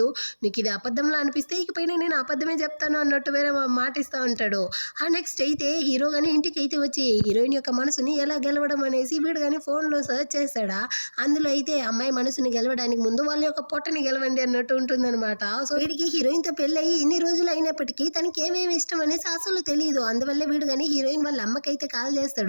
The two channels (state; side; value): inverted; both; correlation -1.00